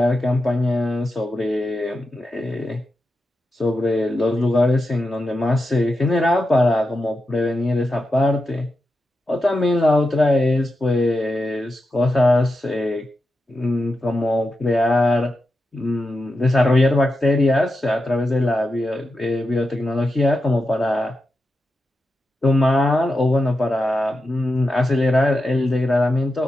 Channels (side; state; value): both; normal; correlation 0.89